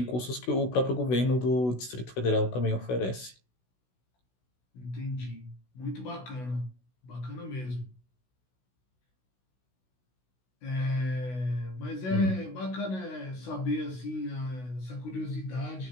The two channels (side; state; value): right; late; 16 ms